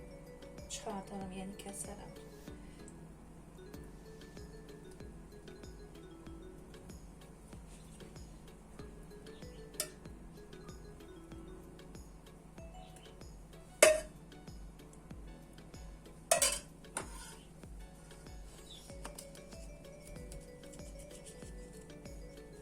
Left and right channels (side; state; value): both; identical; correlation 1.00